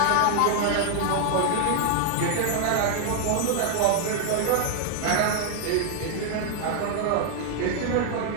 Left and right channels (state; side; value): different; both; correlation 0.00